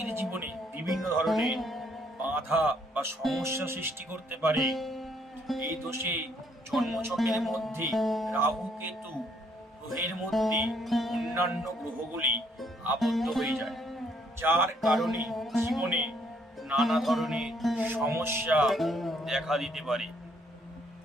জীবনে বিভিন্ন ধরনের বাধা বা সমস্যা সৃষ্টি করতে পারে। এই দোষে জন্মছকের মধ্যে রাহু কেতু গ্রহের মধ্যে অন্যান্য গ্রহগুলি আবদ্ধ হয়ে যায়, যার কারণে জীবনে নানা ধরনের সমস্যা দেখা দিতে পারে।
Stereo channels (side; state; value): both; normal; correlation 0.68